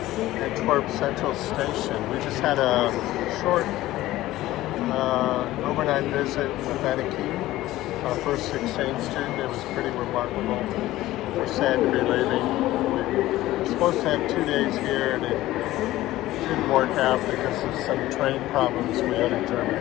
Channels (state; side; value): quieter; right; 16.1 dB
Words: Central Station. We just had a short overnight visit with Annechien, our first exchange student. It was pretty remarkable. We're sad to be leaving. We were supposed to have 2 days here, and it didn't work out because of some train problems we had in